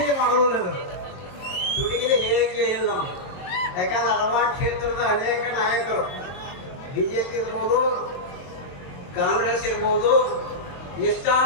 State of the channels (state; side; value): late; right; 22 ms